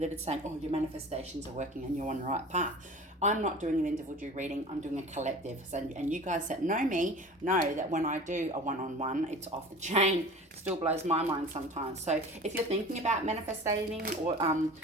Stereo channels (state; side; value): normal; both; correlation 0.39